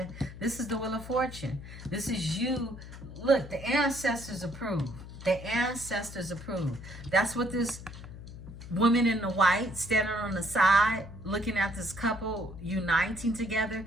This is the Wheel of Fortune. This is you. Look, the ancestors approve. The ancestors approve. That's what this woman in the white standing on the side looking at this couple uniting together.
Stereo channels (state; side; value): noise; left; hum, 13 dB below the sound